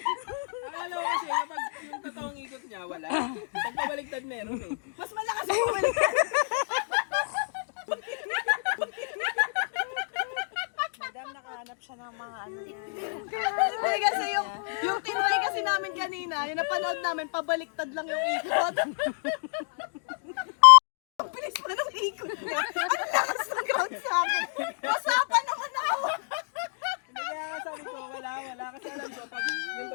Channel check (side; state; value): right; silent; digital silence